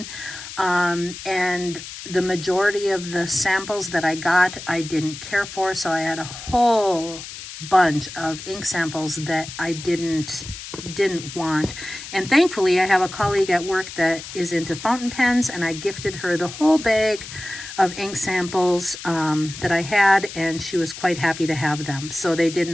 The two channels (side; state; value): left; noise; hiss, 12 dB below the sound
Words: and the majority of the samples that I got I didn't care for, so I had a whole bunch of ink samples that I didn't want. And thankfully I have a colleague at work that is into fountain pens, and I gifted her the whole bag of ink samples that I had, and she was quite happy to have them, so they did